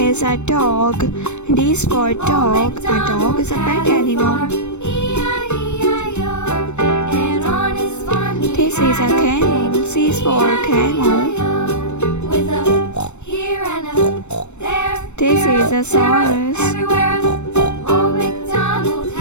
a dog. D is for dog. A dog is a pet animal. This is a camel. C is for camel. This is a saurus.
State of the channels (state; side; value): late; right; 0.82 ms